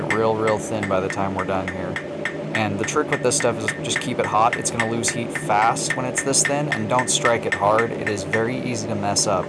get real thin by the time we're done here. And the trick with this stuff is just keep it hot. It's going to lose heat fast when it's this thin, and don't strike it hard. It is very easy to mess up.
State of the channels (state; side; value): identical; both; correlation 1.00